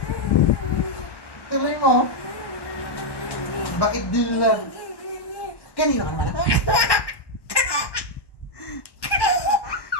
Tuloy mo. Bakit din lang? Kanino ka nagmana?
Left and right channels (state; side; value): late; right; 1.1 ms